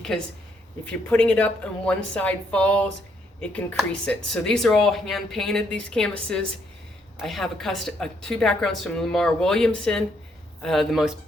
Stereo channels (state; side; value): normal; both; correlation 0.73